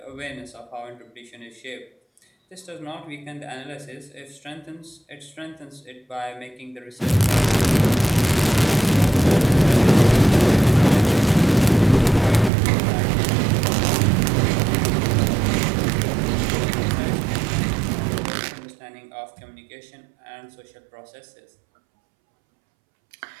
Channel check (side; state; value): left; drops out; at 12.5 s